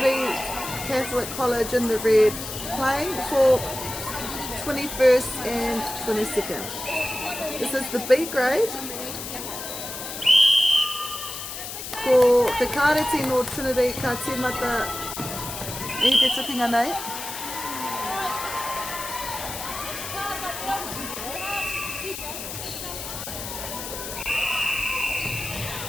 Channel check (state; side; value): noise; left; hiss, 8 dB below the sound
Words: Catholic College in the red. Playing for 21st and 22nd. This is the B grade. Ko te kāreti no Trinity ka tīmata I te tukinga nei.